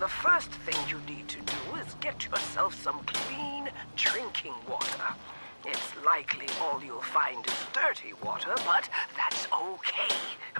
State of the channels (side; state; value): both; inverted; correlation -1.00